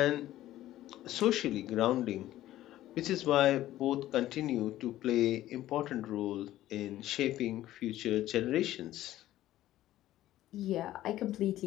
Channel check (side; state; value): right; quieter; 14.2 dB